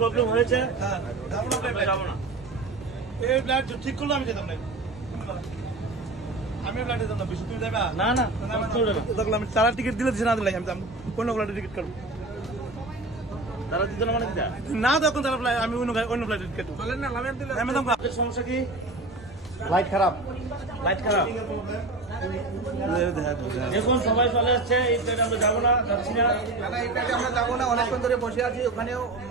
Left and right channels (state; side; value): quieter; left; 3.0 dB